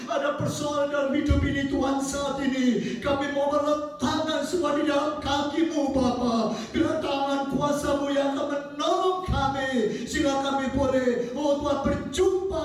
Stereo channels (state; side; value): identical; both; correlation 1.00